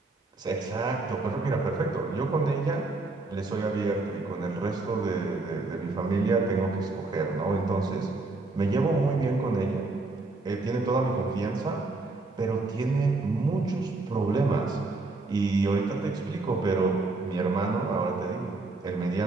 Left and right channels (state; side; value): quieter; left; 3.3 dB